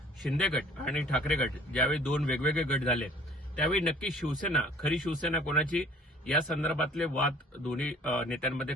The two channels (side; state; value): both; normal; correlation 0.51